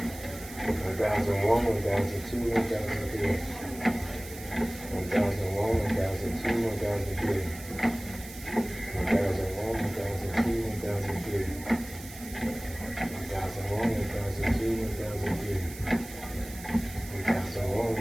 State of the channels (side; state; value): right; noise; hiss, 15 dB below the sound